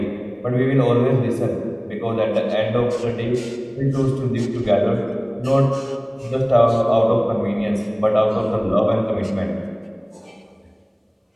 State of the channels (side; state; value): both; identical; correlation 1.00